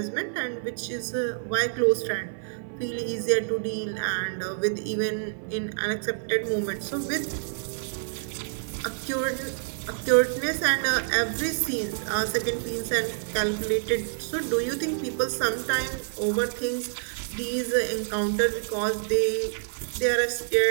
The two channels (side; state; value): left; silent; digital silence